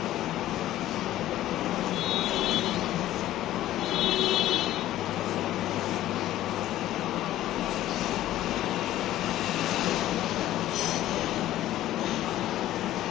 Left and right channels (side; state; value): right; quieter; 14.0 dB